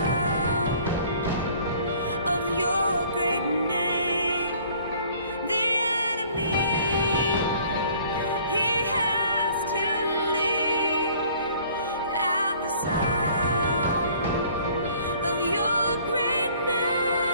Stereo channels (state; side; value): inverted; both; correlation -0.55